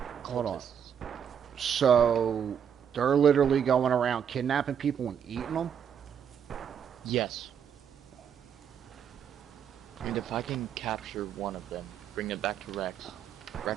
Hold on. So they're literally going around kidnapping people and eating them. Yes. And if I can capture one of them, bring it back to Rex,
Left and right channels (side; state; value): left; quieter; 8.2 dB